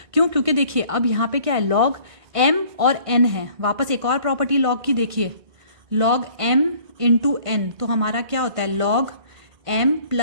क्यों? क्योंकि देखिए अब यहाँ पे क्या है, लॉग m और n है। वापस एक और प्रॉपर्टी लॉग की देखिए, लॉग m इंटू n, तो हमारा क्या होता है, log m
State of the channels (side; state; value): left; late; 1.5 ms